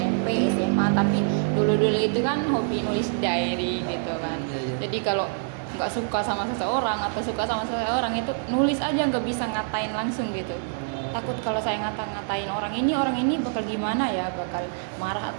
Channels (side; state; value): left; silent; digital silence